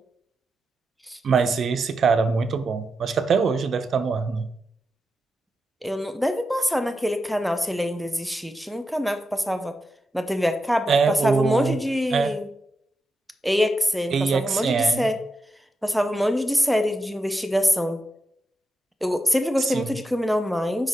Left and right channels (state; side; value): normal; both; correlation 0.87